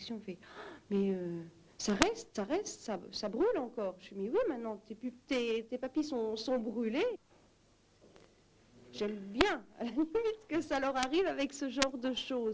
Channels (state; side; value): identical; both; correlation 1.00